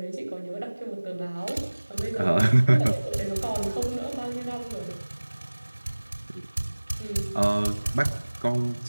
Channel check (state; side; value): inverted; both; correlation -1.00